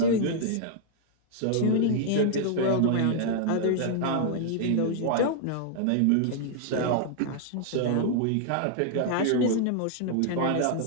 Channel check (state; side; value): different; both; correlation -0.01